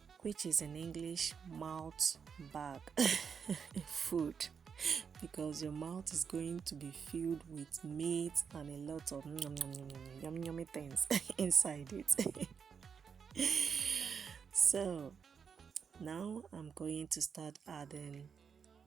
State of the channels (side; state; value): left; quieter; 6.5 dB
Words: which is in English mouth bag food, because your mouth is going to be filled with meat and a lot of yummy things inside it. So now I'm going to start adding